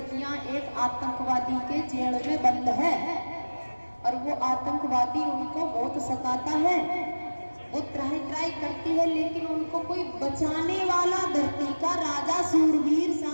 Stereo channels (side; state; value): both; inverted; correlation -1.00